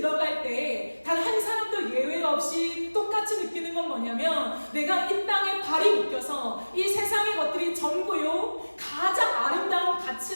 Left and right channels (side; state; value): both; inverted; correlation -1.00